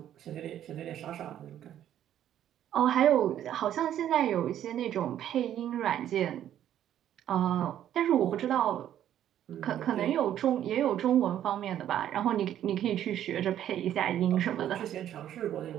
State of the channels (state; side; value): quieter; left; 11.1 dB